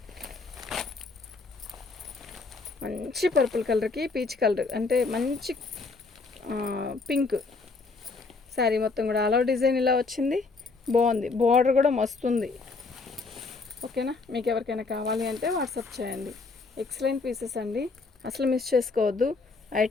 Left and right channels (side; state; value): right; quieter; 4.0 dB